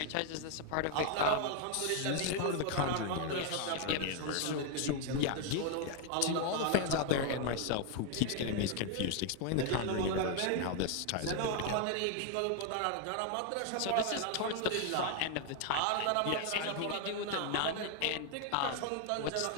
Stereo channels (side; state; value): both; different; correlation 0.00